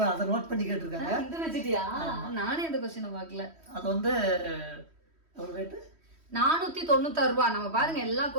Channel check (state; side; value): late; left; 3.1 ms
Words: அதை நோட் பண்ணி கேட்டிருக்காங்க. இந்த பெட்ஷீட்டியா? நானே இந்த கொஸ்டினை பார்க்கல. அது வந்து எவ்வளோ ரேட்டு? 496 ரூபா. நம்ம பாருங்க எல்லா